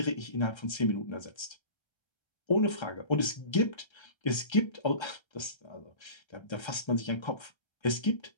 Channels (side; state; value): right; late; 1.3 ms